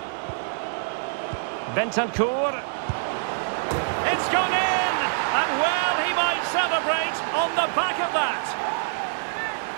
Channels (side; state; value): left; silent; digital silence